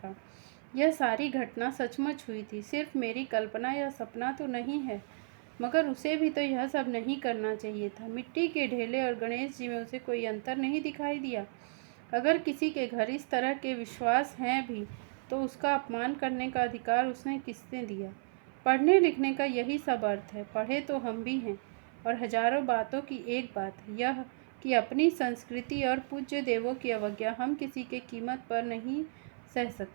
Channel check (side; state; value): left; silent; 56 dB below the other